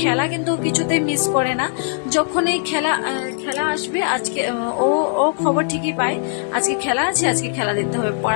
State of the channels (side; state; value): right; silent; digital silence